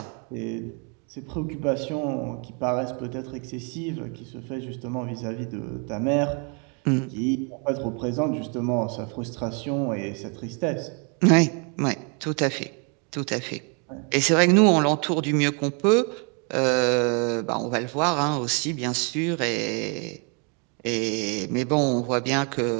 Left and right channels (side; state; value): left; quieter; 36.7 dB